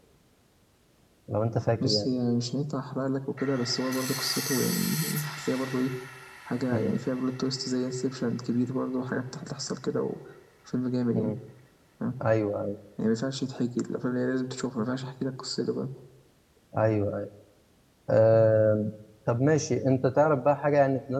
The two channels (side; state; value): both; identical; correlation 1.00